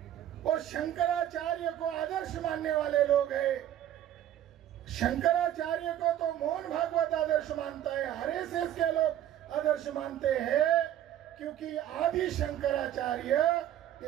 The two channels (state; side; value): quieter; left; 11.7 dB